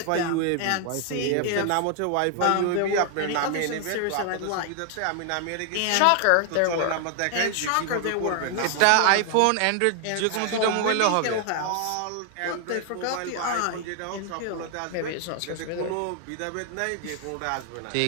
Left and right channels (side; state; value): both; different; correlation 0.00